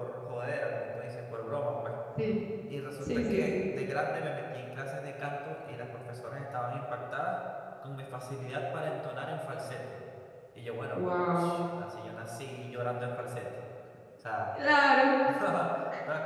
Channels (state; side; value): identical; both; correlation 1.00